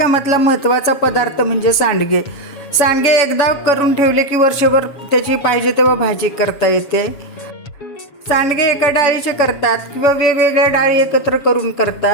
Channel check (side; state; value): right; late; 7.2 ms